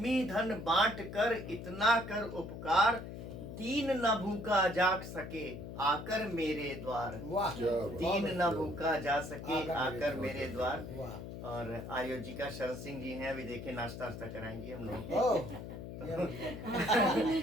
धन बांट कर इतना कर उपकार, दीन न भूखा जा सके आकर मेरे द्वार, दीन न भूखा जा सके आकर मेरे द्वार। और आयोजिका शरद सिंह जी हैं, अभी देखिए नाश्ता वास्ता कराएंगी हम लोग।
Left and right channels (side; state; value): left; noise; hum, 9 dB below the sound